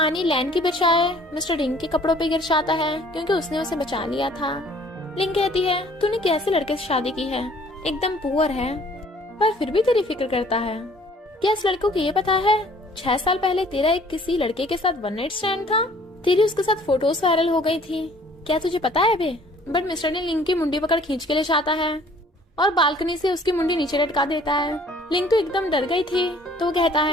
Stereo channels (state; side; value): normal; both; correlation 0.56